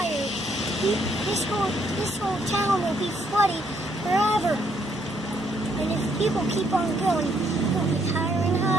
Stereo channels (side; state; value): both; normal; correlation 0.71